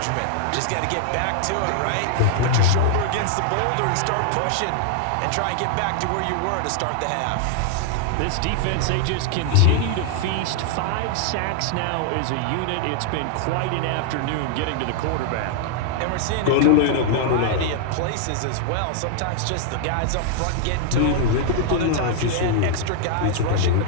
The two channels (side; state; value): both; different; correlation -0.01